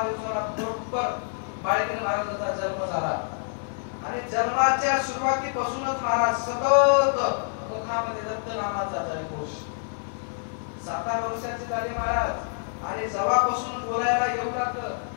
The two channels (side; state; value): right; silent; 60 dB below the other